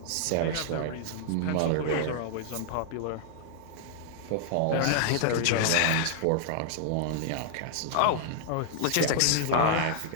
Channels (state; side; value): different; both; correlation -0.01